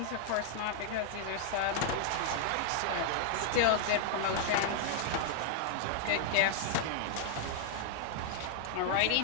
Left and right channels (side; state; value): both; different; correlation 0.00